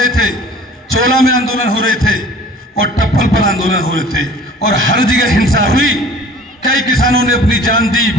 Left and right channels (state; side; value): normal; both; correlation 0.47